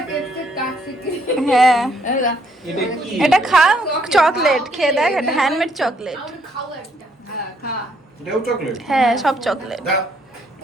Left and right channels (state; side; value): normal; both; correlation 0.70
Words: কেক কাট শিখি। হ্যাঁ এটা কি? এটা খা চকলেট খেয়ে দেখ এটা হ্যান্ডমেড চকলেট আমি খাও একটা। হ্যাঁ, খা। এটাও চকলেট? হ্যাঁ সব চকলেট দাও।